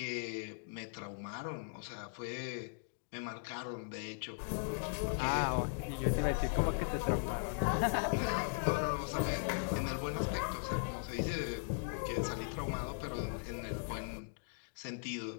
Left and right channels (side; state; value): right; silent; digital silence